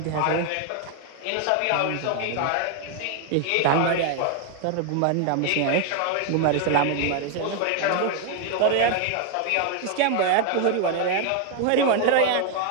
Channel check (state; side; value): different; both; correlation 0.00